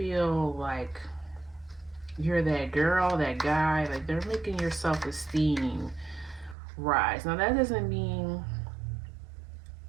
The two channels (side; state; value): left; drops out; at 6.6 s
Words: like you're that girl, that guy. Like, they're making your self-esteem rise. Now, that doesn't mean